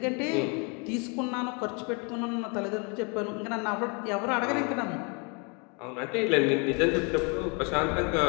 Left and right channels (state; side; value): quieter; right; 33.6 dB